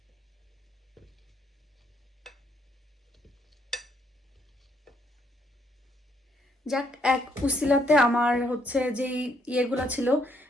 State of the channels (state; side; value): normal; both; correlation 0.71